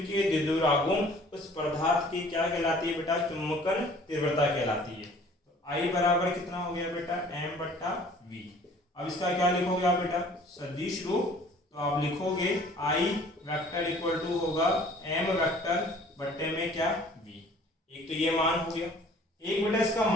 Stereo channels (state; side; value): normal; both; correlation 0.52